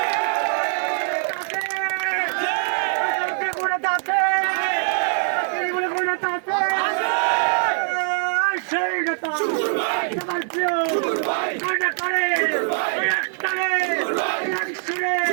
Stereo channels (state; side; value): silent; left; 62 dB below the other